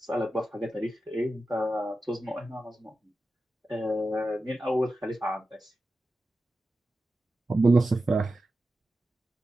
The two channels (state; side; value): normal; both; correlation 0.92